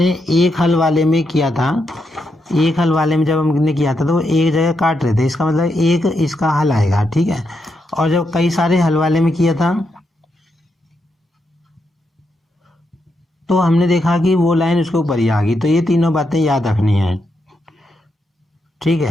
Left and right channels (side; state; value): both; normal; correlation 0.83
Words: एक हल वाले में किया था, एक हल वाले में जब हमने किया था तो वो एक जगह काट रहे थे, इसका मतलब एक इसका हल आएगा। ठीक है, और जब कई सारे हल वाले में किया था तो हमने देखा कि वो लाइन उसके ऊपर ही आ गई। तो ये तीनों बातें याद रखनी है। ठीक